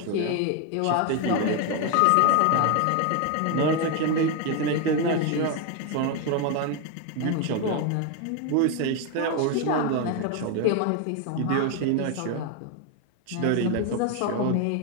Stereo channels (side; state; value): both; different; correlation 0.01